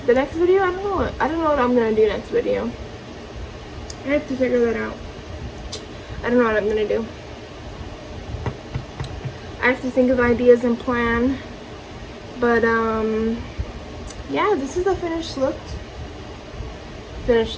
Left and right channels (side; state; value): both; identical; correlation 1.00